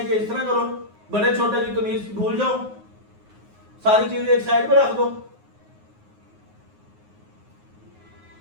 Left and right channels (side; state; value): left; late; 9.5 ms